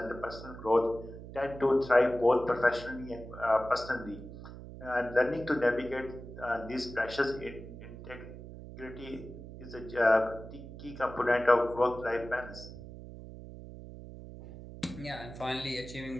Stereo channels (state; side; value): noise; right; hum, 13 dB below the sound